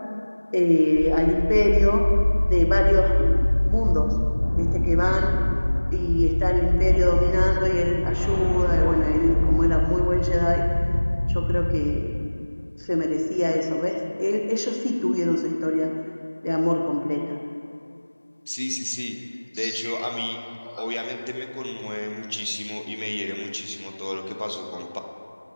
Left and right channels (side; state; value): both; inverted; correlation -1.00